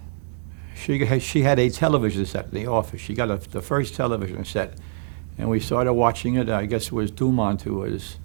she had a television set in the office. She got the first television set, and we started watching it. I guess it was Dumont who was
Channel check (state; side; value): silent; left; digital silence